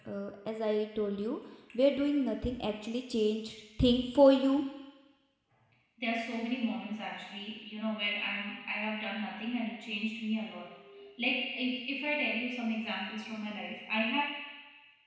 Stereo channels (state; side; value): identical; both; correlation 1.00